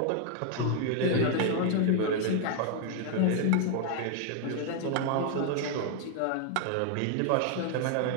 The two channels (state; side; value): different; both; correlation 0.00